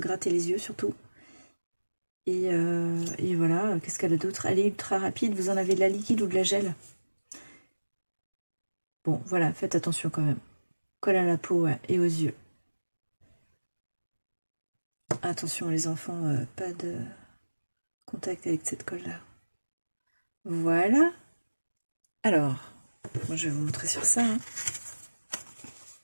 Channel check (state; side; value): inverted; both; correlation -1.00